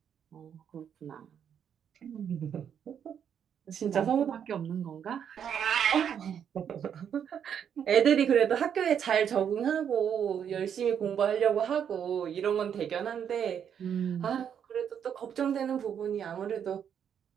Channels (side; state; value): left; quieter; 8.3 dB